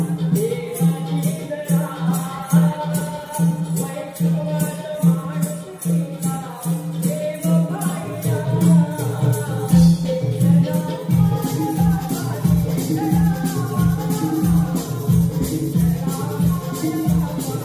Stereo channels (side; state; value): both; identical; correlation 1.00